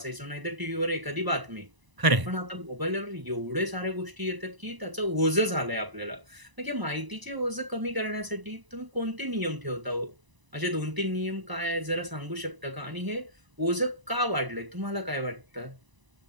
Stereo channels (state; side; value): late; left; 1.0 ms